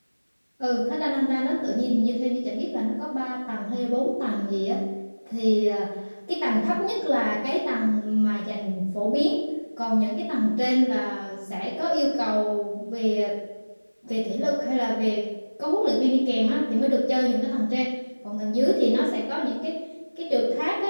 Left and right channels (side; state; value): both; inverted; correlation -1.00